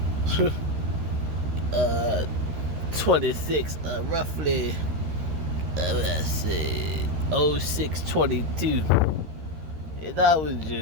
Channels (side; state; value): left; late; 13 ms